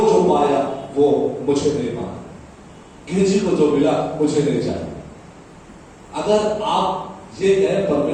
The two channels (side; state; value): both; identical; correlation 1.00